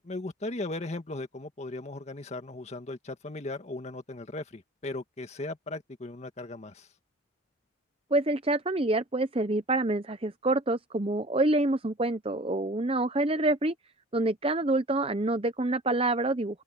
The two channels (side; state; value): both; normal; correlation 0.44